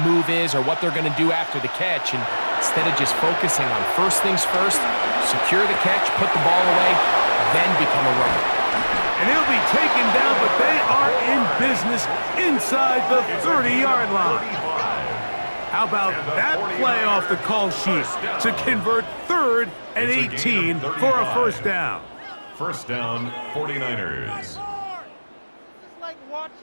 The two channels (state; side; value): inverted; both; correlation -1.00